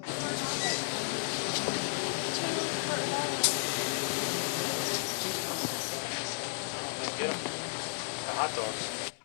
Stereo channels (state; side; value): silent; right; digital silence